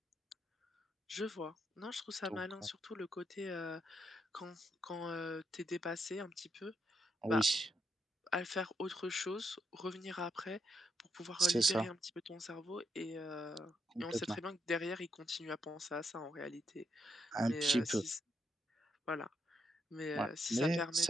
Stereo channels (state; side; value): normal; both; correlation 0.79